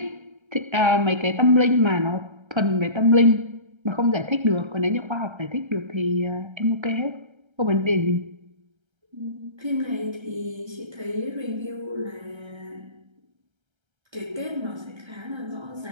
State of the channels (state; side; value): late; left; 1.3 ms